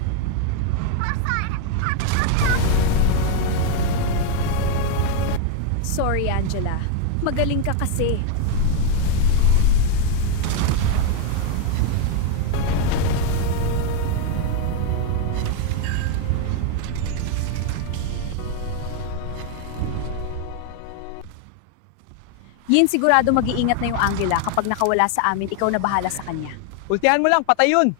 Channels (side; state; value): both; different; correlation 0.01